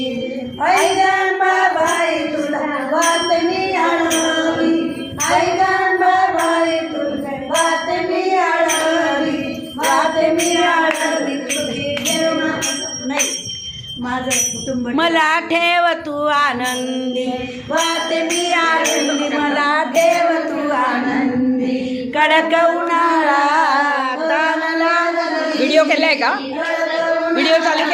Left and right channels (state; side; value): identical; both; correlation 1.00